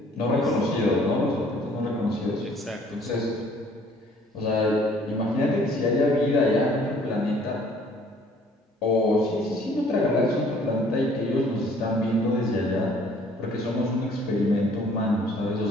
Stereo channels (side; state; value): both; normal; correlation 0.57